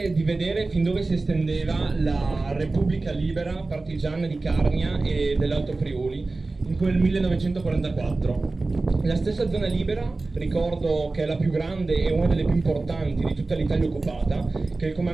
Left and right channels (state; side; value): quieter; left; 3.4 dB